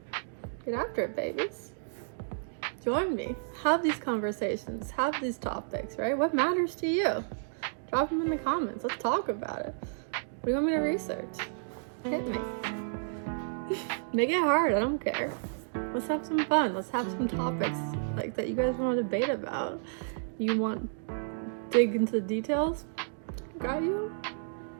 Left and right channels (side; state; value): left; silent; digital silence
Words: Get after it, babies. Join me. Have these conversations. Have these topics, right? What matters to you? Drop them in the comments. Let's talk about it. What do you want me to research? Hit me. Make it hard. I don't care. Let's have some fun. Let's have some topics like that you guys want to debate about. You want dig into the details? Got you.